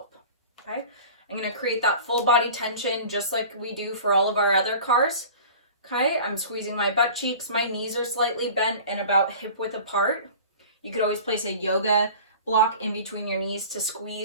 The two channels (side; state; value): both; inverted; correlation -0.40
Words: Okay, I'm going to create that full body tension just like we do for all of our other cars. Okay, I'm squeezing my butt cheeks. My knees are slightly bent and about hip width apart. You could always place a yoga block in between your knees to